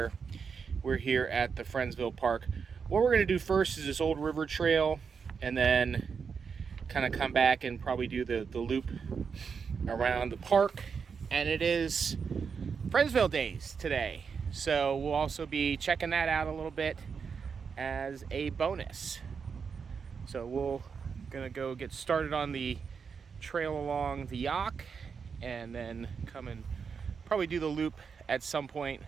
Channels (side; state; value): left; quieter; 6.0 dB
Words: we're here at the Friendsville Park. What we're going to do first is this old river trail, and then kind of come back and probably do the loop around the park. And it is Friendsville Days today, so we'll also be checking that out a little bit as a bonus. So we're gonna go get started on the trail along the Youghiogheny, and then come and probably do the loop at some point,